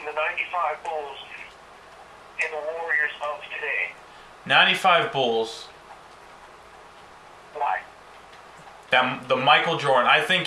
the 95 Bulls and the Warriors of today? 95 Bulls. Why? The Michael Jordan. I think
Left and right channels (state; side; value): identical; both; correlation 1.00